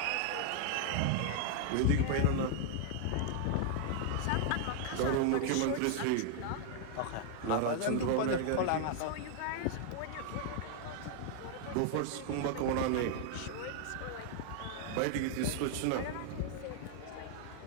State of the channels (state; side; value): different; both; correlation 0.00